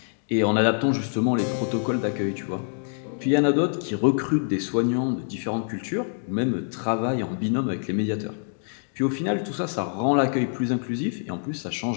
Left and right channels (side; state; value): right; silent; digital silence